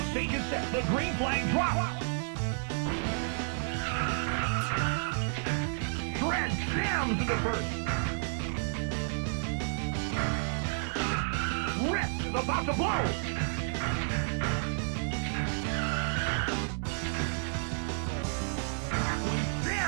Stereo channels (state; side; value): silent; left; digital silence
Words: Stage is set. The green flag drops. Shred jams into first. Rip is about to blow.